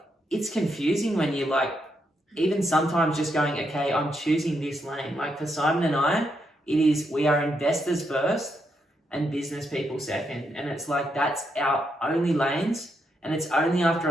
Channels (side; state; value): both; normal; correlation 0.80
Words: it's confusing when you like, even sometimes just going, okay, I'm choosing this lane. Like for Simon and I, we are investors first and business people second. And it's like, that's our only lanes. And it's only after